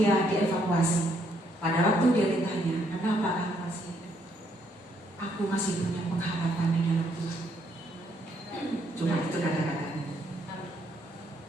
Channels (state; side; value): normal; both; correlation 0.71